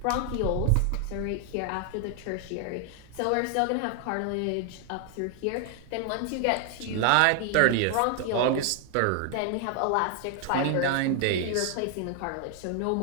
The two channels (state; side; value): different; both; correlation 0.00